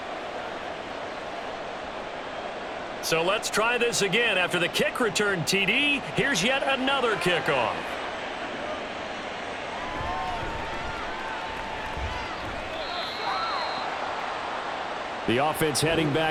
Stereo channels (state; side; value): identical; both; correlation 1.00